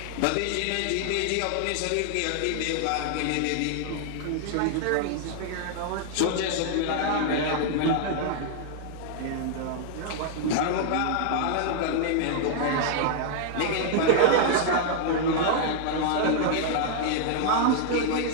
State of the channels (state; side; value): different; both; correlation -0.01